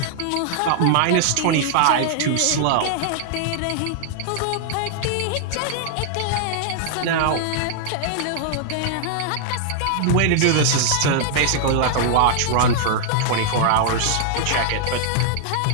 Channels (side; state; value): both; different; correlation -0.01